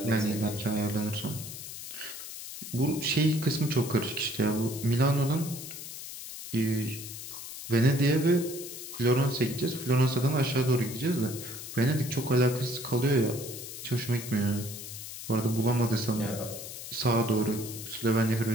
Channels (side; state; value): left; noise; hiss, 10 dB below the sound